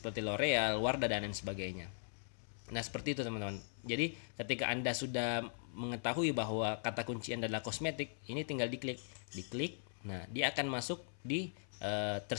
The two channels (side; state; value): right; silent; 51 dB below the other